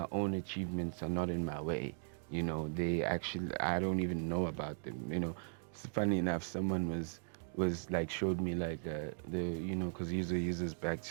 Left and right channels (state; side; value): silent; left; digital silence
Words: own achievements are not in my way. You know, they actually, I don't even know about them. You know, it's funny enough, someone was like, showed me like the, you know, because users back,